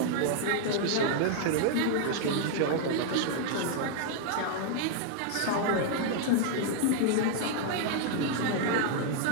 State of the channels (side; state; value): both; different; correlation 0.00